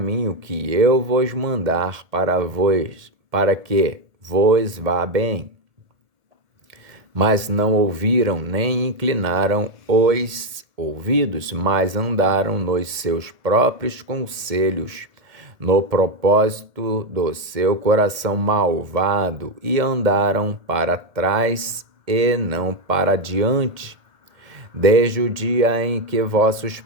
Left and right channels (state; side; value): late; left; 1.8 ms